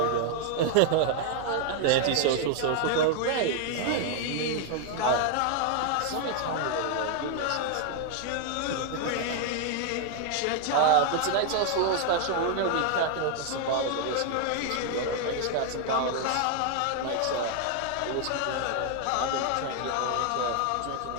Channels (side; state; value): both; different; correlation 0.00